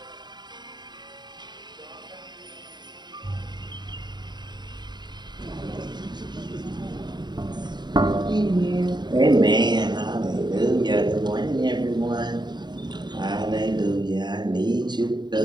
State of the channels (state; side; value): late; left; 0.21 ms